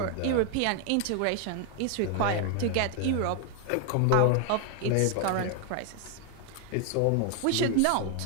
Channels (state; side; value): different; both; correlation 0.00